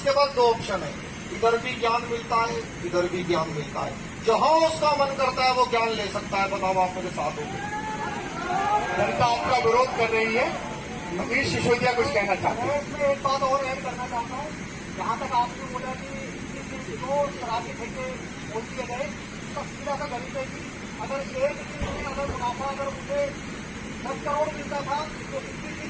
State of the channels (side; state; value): both; identical; correlation 1.00